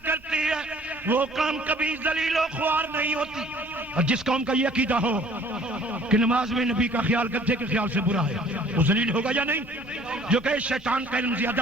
کرتی ہے، وہ قوم کبھی ذلیل و خوار نہیں ہوتی۔ اور جس قوم کا یہ عقیدہ ہو کہ نماز میں نبی کا خیال گدھے کے خیال سے برا ہے، وہ ذلیل ہوگا یا نہیں؟ جو کہ شیطان کا علم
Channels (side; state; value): both; normal; correlation 0.54